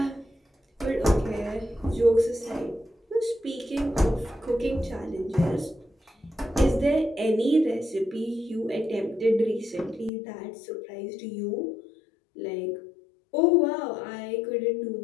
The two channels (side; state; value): right; drops out; at 10.1 s